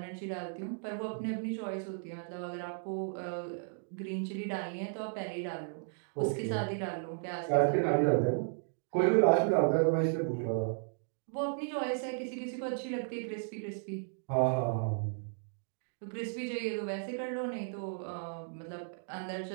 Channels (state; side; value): silent; left; digital silence